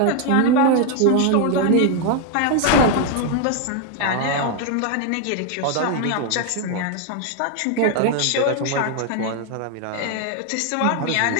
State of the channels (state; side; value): different; both; correlation 0.01